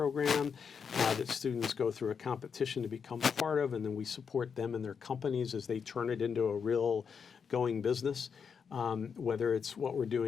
that students go through a competition to become part of, and then we support them and their companies as they turn it into a real going business. Whether it's what we're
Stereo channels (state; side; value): quieter; right; 6.4 dB